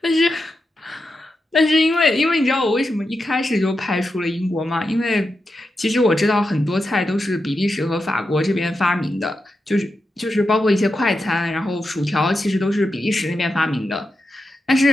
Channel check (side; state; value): both; normal; correlation 0.88